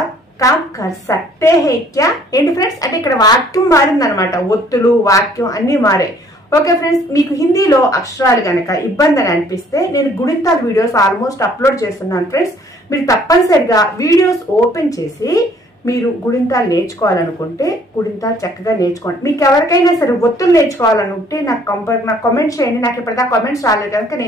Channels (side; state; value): both; normal; correlation 0.59